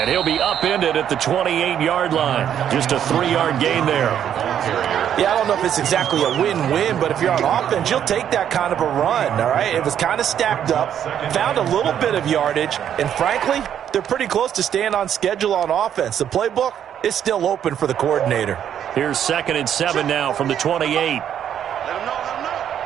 he'll be upended at the 28-yard line. Just a 3-yard gain there. Yeah, I don't know if it's exactly a win-win, but if you're on offense, you'll take that kind of a run, all right? It was kind of stacked up, found a little bit of yardage, and frankly, they're pretty close to staying on schedule on offense. The playbook is still open for the coordinator. Here's 2nd and 7 now from the 28. Let him know, let him know.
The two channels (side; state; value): left; quieter; 9.6 dB